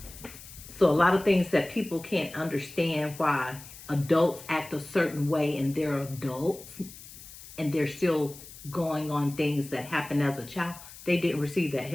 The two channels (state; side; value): noise; left; hiss, 17 dB below the sound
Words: So a lot of things that people can't understand why adults act a certain way, and they're adults and they're still going on things that happened as a child. They didn't receive that